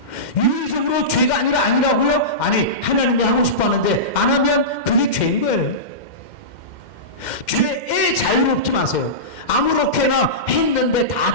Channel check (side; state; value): right; late; 2.1 ms